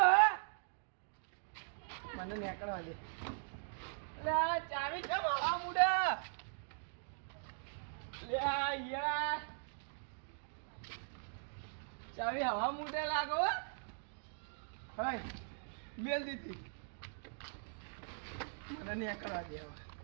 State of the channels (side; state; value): left; silent; digital silence